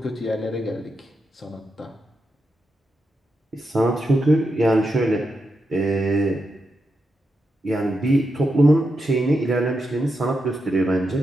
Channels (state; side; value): normal; both; correlation 0.86